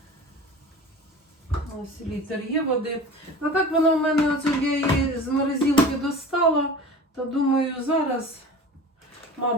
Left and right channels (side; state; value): both; normal; correlation 0.36